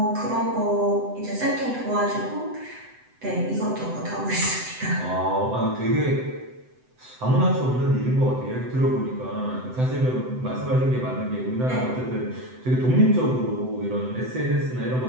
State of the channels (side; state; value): left; late; 7.9 ms